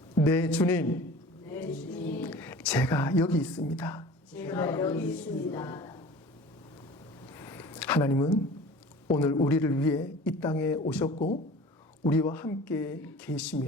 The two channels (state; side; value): normal; both; correlation 0.42